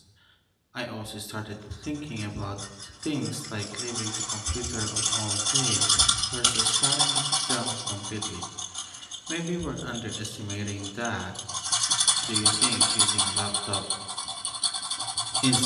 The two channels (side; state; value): both; identical; correlation 1.00